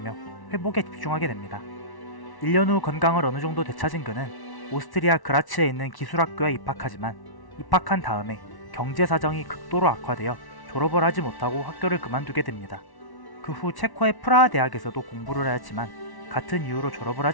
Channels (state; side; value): late; right; 1.1 ms